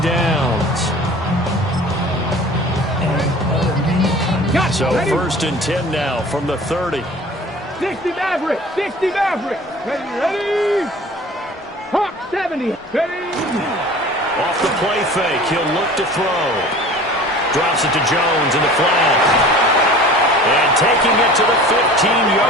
downs. So first and 10 now from the 30. 60 Maverick, 60 Maverick. Ready? Hawk 70. Ready? Off the play fake, he'll look to throw. Drops it to Jones in the flat. And taking it to the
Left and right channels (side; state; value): both; normal; correlation 0.43